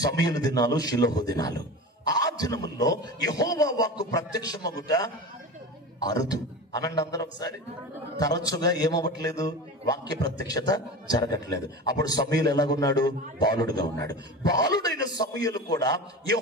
సమూయేలు దినాలు, షిలోహు దినాలు. ఆ దినముల్లో యెహోవా వాక్కు ప్రత్యక్షమగుట అరుదు. అనండి అందరూ ఒకసారి. తరచుగా ఏమవ్వట్లేదు? వాక్య ప్రత్యక్షత జరగట్లేదు. అప్పుడు సమూయేలు ఎలాగున్నాడు? బాలుడుగా ఉన్నాడు. బాలుడైన సమూయేలు కూడా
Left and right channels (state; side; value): normal; both; correlation 0.30